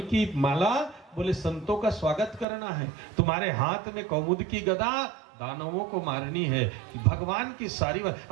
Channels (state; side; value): drops out; left; at 2.5 s